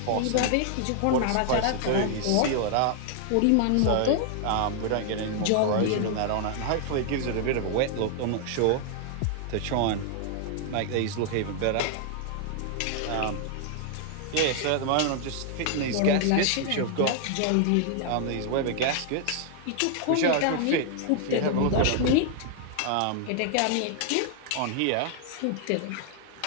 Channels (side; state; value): both; different; correlation 0.00